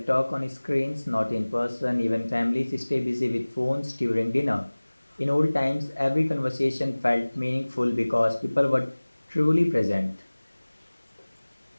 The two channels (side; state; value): both; inverted; correlation -1.00